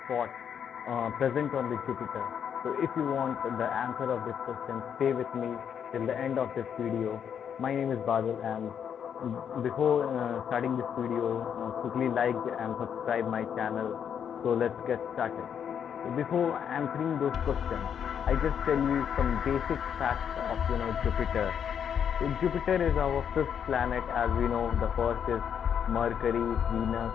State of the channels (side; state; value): right; quieter; 8.2 dB